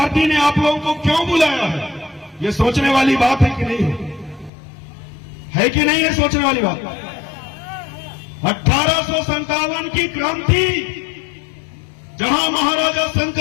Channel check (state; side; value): drops out; right; at 4.5 s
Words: ने आप लोगों को क्यों बुलाया है? ये सोचने वाली बात है कि नहीं है कि नहीं है सोचने वाली बात? 1857 की क्रांति, जहां महाराजा